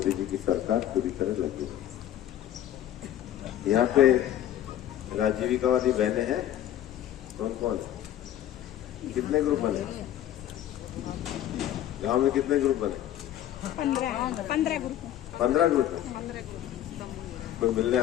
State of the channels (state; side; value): quieter; right; 12.0 dB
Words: जी की सरकार पूरी तरह लगी है। यहाँ पे राजीविका वाली बहनें हैं, कौन कौन है? कितने ग्रुप बने गांव में? कितने ग्रुप बने? 15 ग्रुप। 15 ग्रुप है। कोई मिलने